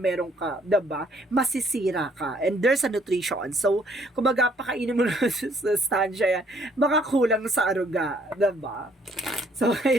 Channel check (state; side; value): normal; both; correlation 0.64